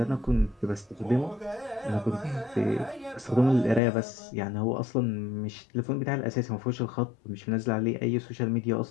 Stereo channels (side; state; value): right; drops out; at 3.8 s